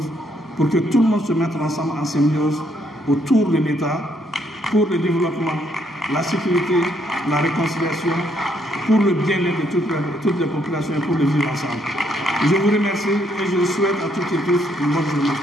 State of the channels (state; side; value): normal; both; correlation 0.72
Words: pour que tout le monde se mette ensemble en symbiose autour de l'État pour le développement, la sécurité, la réconciliation, pour le bien-être de toutes les populations et pour le vivre ensemble. Je vous remercie et je souhaite à toutes et tous une bonne journée.